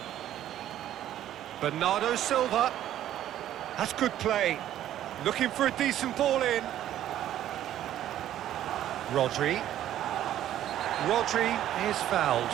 Bernardo Silva. That's good play. Looking for a decent ball in. Rodri. Rodri is fouled.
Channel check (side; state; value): left; quieter; 12.0 dB